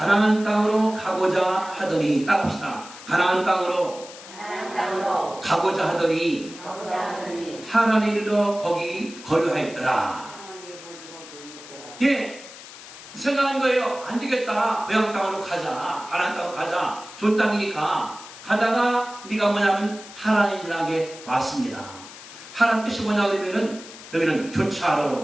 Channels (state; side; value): noise; left; hiss, 16 dB below the sound